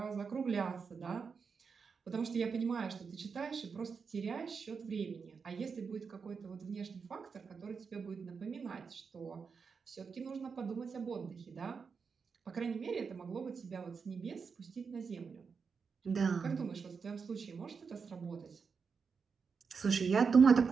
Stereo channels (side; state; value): left; quieter; 5.6 dB